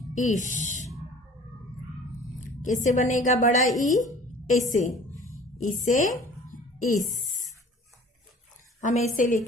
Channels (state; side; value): normal; both; correlation 0.47